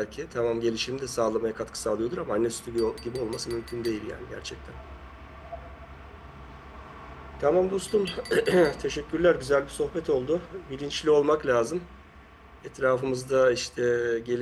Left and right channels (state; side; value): identical; both; correlation 1.00